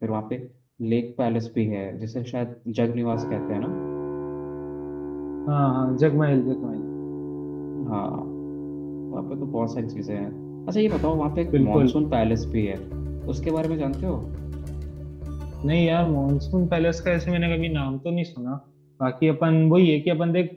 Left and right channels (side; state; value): both; identical; correlation 1.00